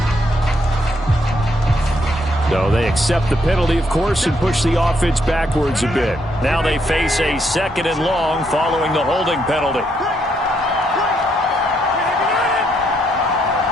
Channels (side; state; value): both; normal; correlation 0.74